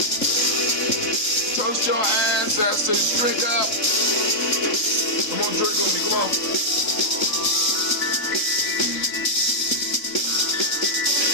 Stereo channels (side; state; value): right; late; 3.7 ms